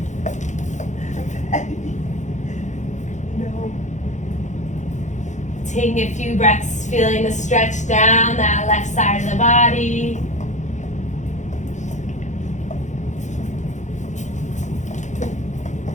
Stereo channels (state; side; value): late; right; 0.35 ms